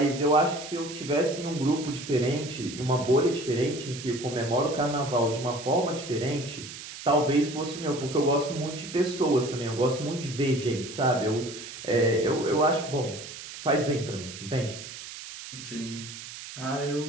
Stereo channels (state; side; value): noise; right; hiss, 12 dB below the sound